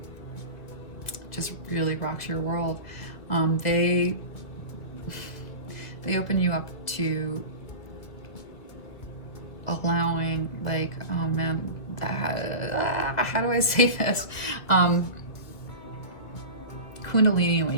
just really rocks your world. They open you up to allowing, like, oh man, how do I say this? Kundalini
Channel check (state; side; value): late; right; 2.2 ms